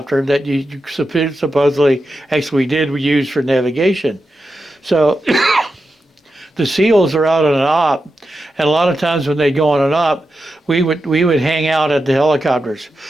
that you supposedly actually we use for navigation. So the SEALs are out on an op, and a lot of times when they go on an op, we would hang out at the helicopters.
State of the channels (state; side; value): normal; both; correlation 0.89